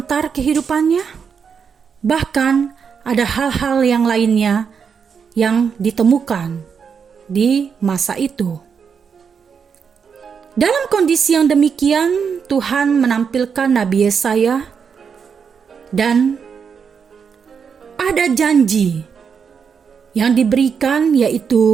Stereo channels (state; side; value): quieter; left; 6.5 dB